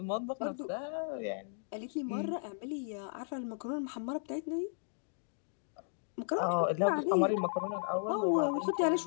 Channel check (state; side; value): silent; right; digital silence